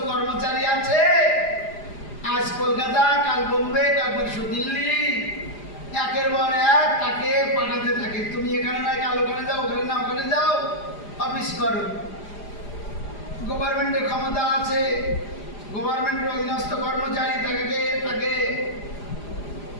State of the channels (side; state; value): right; late; 4.9 ms